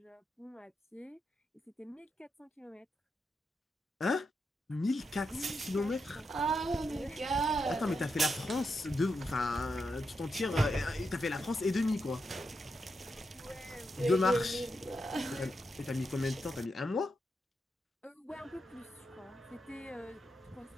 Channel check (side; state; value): both; normal; correlation 0.85